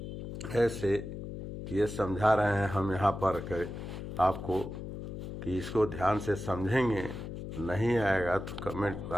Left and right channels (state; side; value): noise; left; hum, 8 dB below the sound